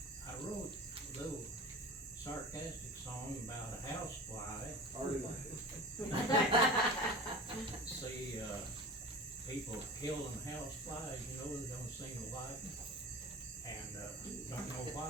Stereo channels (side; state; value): both; normal; correlation 0.34